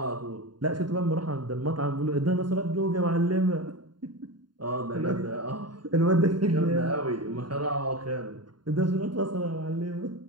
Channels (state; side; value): late; left; 0.71 ms